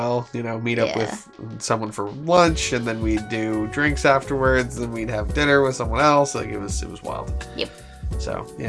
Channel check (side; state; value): both; identical; correlation 1.00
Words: You know, meet up with someone for lunch, and then we'd do drinks afterwards. Then we'd have dinner with someone else. Like it was wild. Yep. So